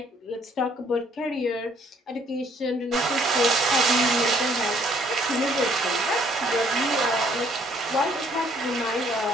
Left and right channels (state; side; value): normal; both; correlation 0.64